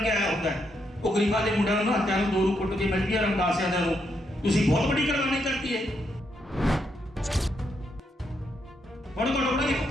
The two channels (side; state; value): both; normal; correlation 0.79